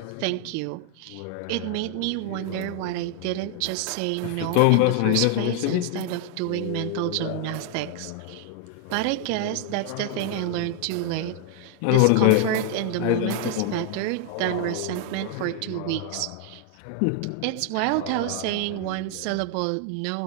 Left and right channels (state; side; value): different; both; correlation 0.00